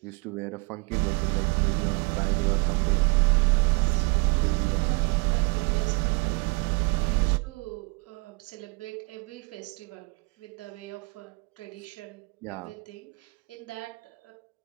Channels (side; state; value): left; quieter; 30.2 dB